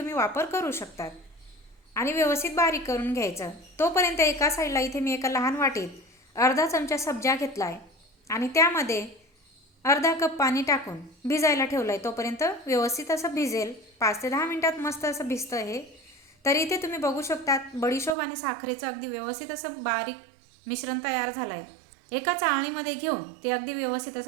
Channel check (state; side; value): drops out; left; at 18.2 s